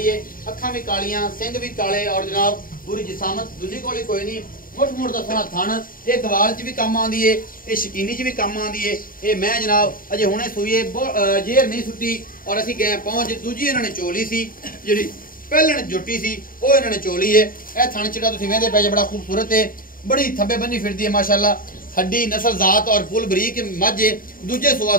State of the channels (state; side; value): late; right; 0.41 ms